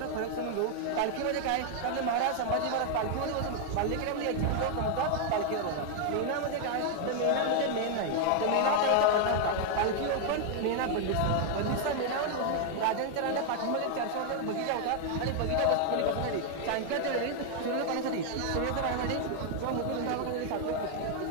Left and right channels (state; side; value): different; both; correlation 0.00